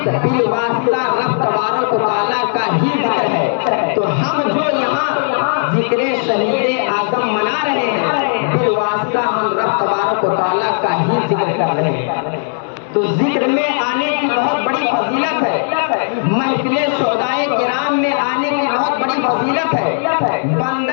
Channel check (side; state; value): right; silent; 67 dB below the other